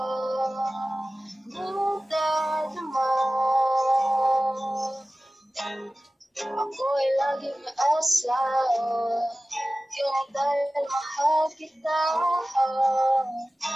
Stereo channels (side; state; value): both; normal; correlation 0.96